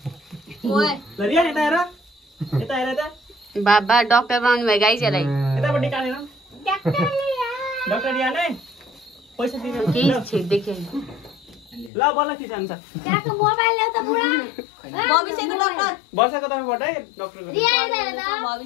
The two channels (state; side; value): drops out; right; at 11.9 s